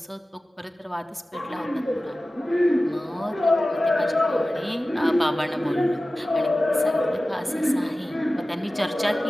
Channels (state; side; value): normal; both; correlation 0.96